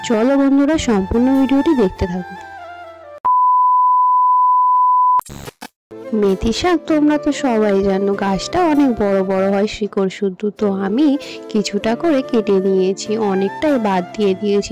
চলো বন্ধুরা, সম্পূর্ণ ভিডিওটি দেখতে থাকো। মেথি শাক তোমরা তো সবাই জানো, গাছটা অনেক বড় বড় হয়, শিকড় শুদ্ধ। তো আমি কিছুটা করে কেটে নিয়েছি, অনেকটাই বাদ দিয়ে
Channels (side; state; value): both; identical; correlation 1.00